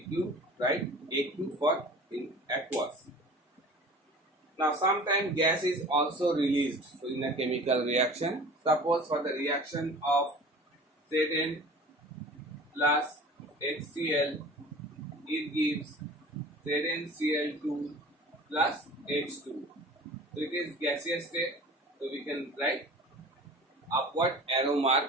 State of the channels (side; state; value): both; normal; correlation 0.41